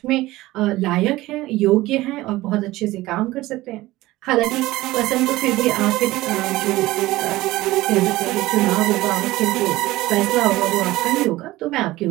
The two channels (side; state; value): left; quieter; 17.9 dB